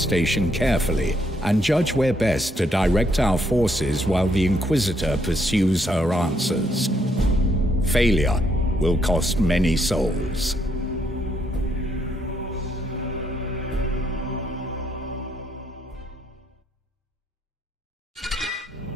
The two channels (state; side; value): normal; both; correlation 0.73